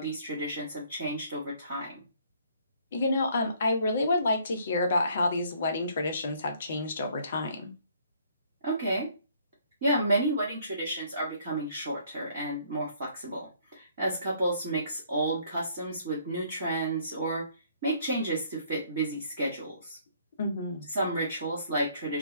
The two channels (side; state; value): both; inverted; correlation -0.62